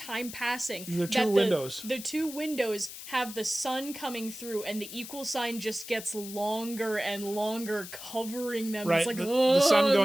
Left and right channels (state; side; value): noise; left; hiss, 12 dB below the sound